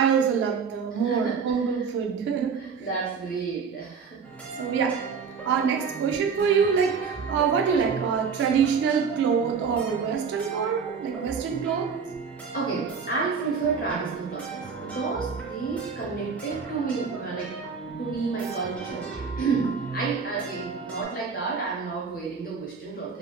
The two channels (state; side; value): quieter; left; 5.8 dB